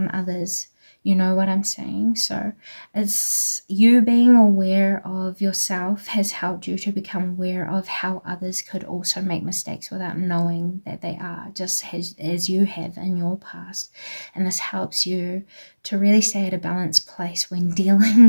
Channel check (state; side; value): inverted; both; correlation -1.00